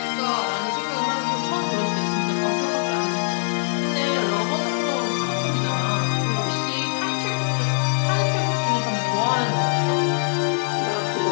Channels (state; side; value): silent; right; 64 dB below the other